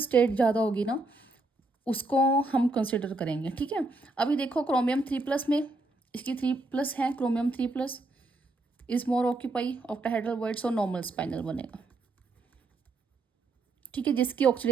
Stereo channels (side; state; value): left; quieter; 3.1 dB